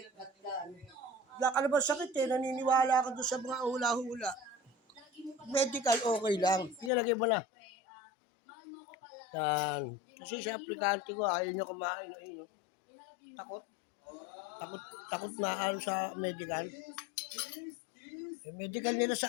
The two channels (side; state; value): right; drops out; at 6.9 s